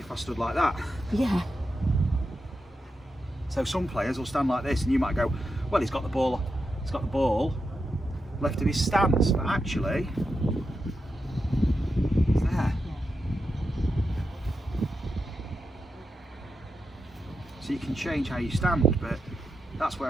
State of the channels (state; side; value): normal; both; correlation 0.87